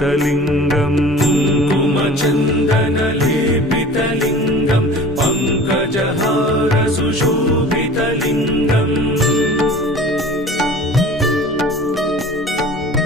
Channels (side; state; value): both; normal; correlation 0.43